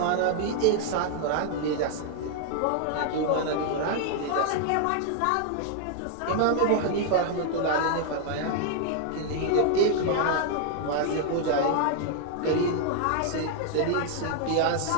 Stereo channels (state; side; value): different; both; correlation 0.00